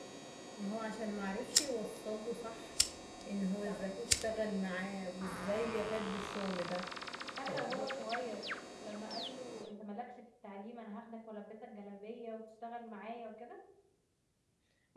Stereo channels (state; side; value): identical; both; correlation 1.00